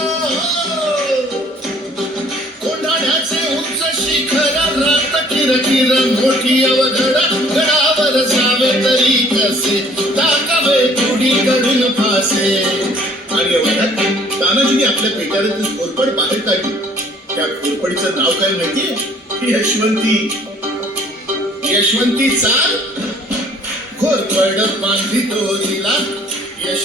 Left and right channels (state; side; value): normal; both; correlation 0.57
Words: कोंढाण्याचे उंच शिखर, रात किरकिर मोठी अवघड, गडावर जावे तरी कसे, टाकावे तुडीकडून फासे. आणि एवढ्यात तानाजीने आपल्या पेटाऱ्यातून घोरपड बाहेर काढली. त्या घोरपडीचं नाव काय माहितीये? यशवंती. यशवंती चाल घोरपड बांधली तोरीला,